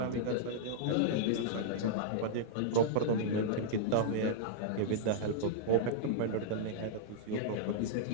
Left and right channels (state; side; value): different; both; correlation -0.02